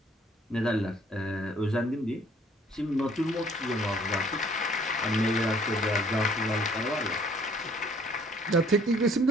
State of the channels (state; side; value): normal; both; correlation 0.59